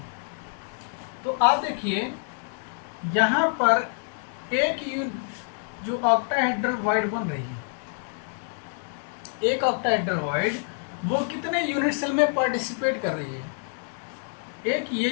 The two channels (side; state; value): right; silent; 58 dB below the other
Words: तो आप देखिए यहाँ पर एक जो ऑक्टाहेड्रल वॉइड बन रही है, एक ऑक्टाहेड्रल वॉइड वो कितने यूनिट सेल में पार्टिसिपेट कर रही है? एक ये